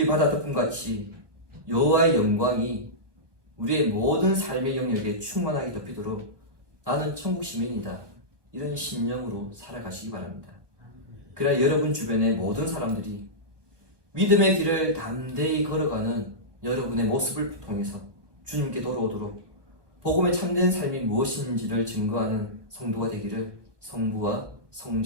바다 덮음같이 여호와의 영광이 우리의 모든 삶의 영역에 충만하게 덮이도록 나는 천국 시민이다, 이런 신념으로 살아가시기 바랍니다. 그래야 여러분 주변의 모든 사람들이 믿음의 길을 담대히 걸어가는 여러분의 모습을 통해서 주님께 돌아오도록 복음의 참된 삶이 무엇인지를 증거하는 성도가 되기를 성부와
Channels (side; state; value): left; late; 1.2 ms